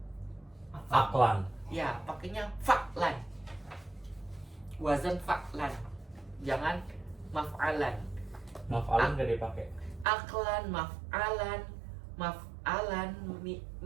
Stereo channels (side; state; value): left; drops out; at 10.1 s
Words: Aklan. Ya, pakainya fa'lan. Wazan fa'lan. Jangan maf'alan. Maf'alan gak dipakai. Aklan, maf'alan,